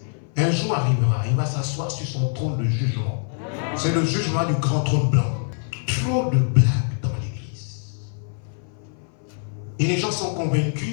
Un jour arrivera, il va s'asseoir sur son trône de jugement. C'est le jugement du grand trône blanc. Trop de blagues dans l'église. Et les gens sont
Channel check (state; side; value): silent; right; 57 dB below the other